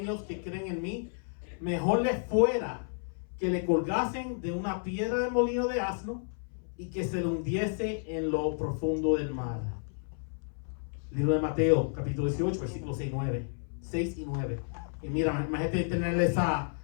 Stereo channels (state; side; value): silent; right; 57 dB below the other